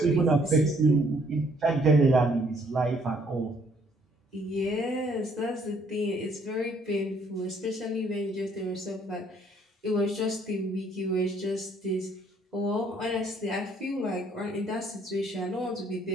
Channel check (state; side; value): normal; both; correlation 0.64